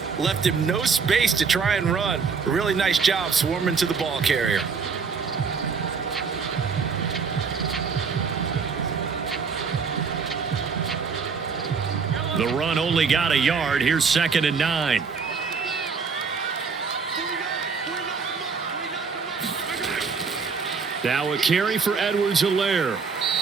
left him no space to try and run. A really nice job swarming to the ball carrier. The run only got a yard. Here's 2nd and 9. Now a carry for Edwards-Helaire.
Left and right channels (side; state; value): left; quieter; 5.4 dB